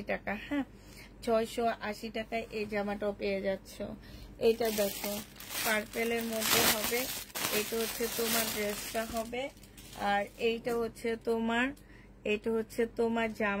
টাকা। হ্যাঁ, 680 টাকায় এই জামাটাও পেয়ে যাচ্ছ। এটা দেখো, পার্পেলের মধ্যে হবে, এটা হচ্ছে তোমার ড্রেসটা হবে, আর এইটা হচ্ছে তোমার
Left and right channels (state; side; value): identical; both; correlation 1.00